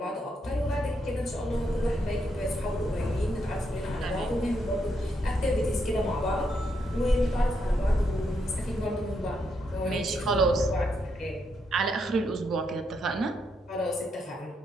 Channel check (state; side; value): normal; both; correlation 0.79